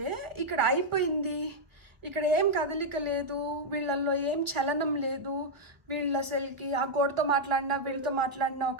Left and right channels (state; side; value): late; left; 1.5 ms